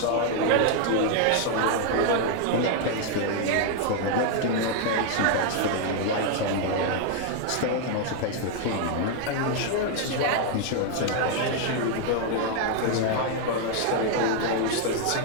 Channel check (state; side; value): different; both; correlation 0.00